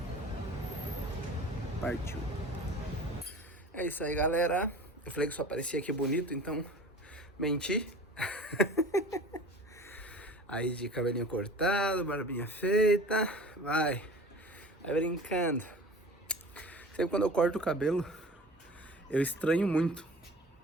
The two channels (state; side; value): normal; both; correlation 0.40